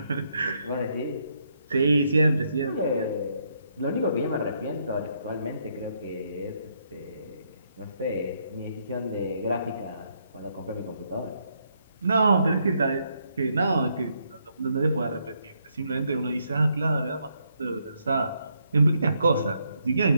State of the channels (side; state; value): both; inverted; correlation -0.75